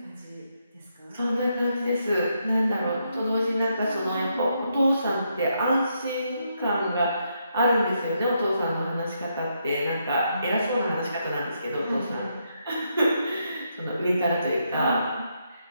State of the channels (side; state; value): both; inverted; correlation -0.79